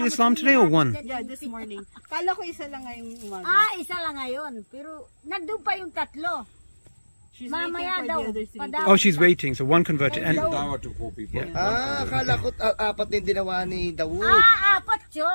Islam today or one? Yeah, this morning. Kala ko isa lang ngayong umaga. Isa lang ngayon. Pero nandun pa yung 3. She's Mamaya waiting for daw. the other 3. Padaw. Oh, she's waiting. So one converted. And Dawa to 4 people. Akala ko 4 din dinawa ni Dawood. 4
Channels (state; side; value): inverted; both; correlation -1.00